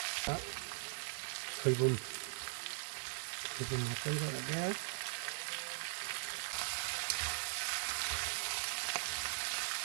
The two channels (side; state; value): left; silent; digital silence